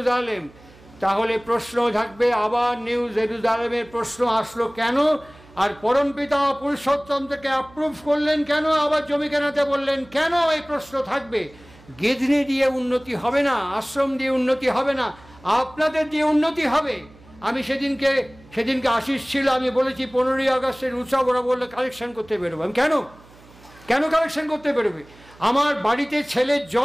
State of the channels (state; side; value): noise; right; hum, 25 dB below the sound